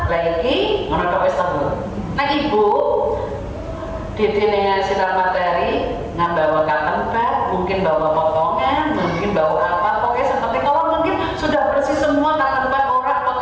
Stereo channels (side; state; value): both; identical; correlation 1.00